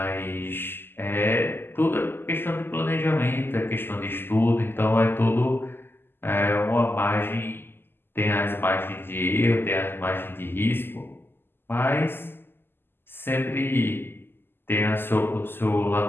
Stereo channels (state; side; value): late; right; 0.10 ms